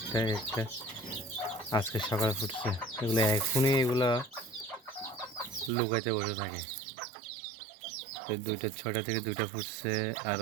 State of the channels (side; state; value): left; drops out; at 5.7 s